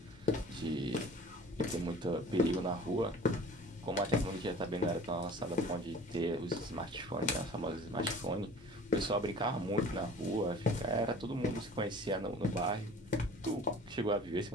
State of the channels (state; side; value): normal; both; correlation 0.44